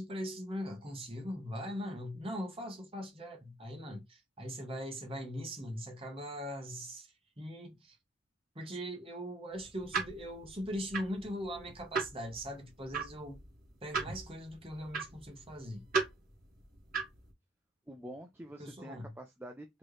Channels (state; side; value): normal; both; correlation 0.63